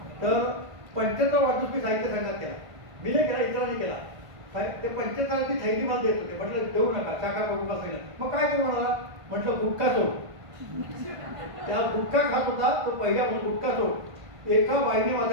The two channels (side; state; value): left; late; 1.5 ms